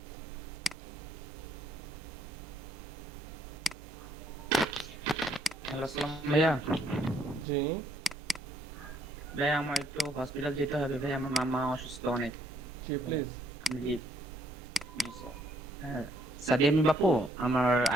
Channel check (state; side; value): normal; both; correlation 0.68